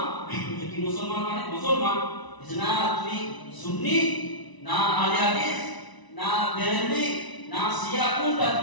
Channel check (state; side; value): late; right; 1.0 ms